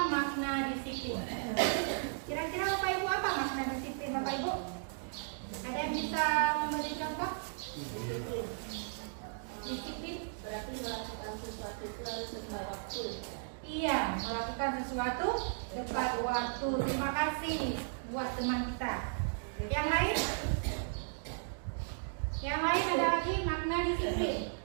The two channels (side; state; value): left; silent; digital silence